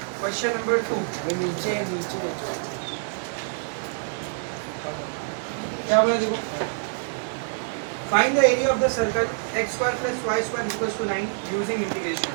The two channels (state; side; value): silent; left; 59 dB below the other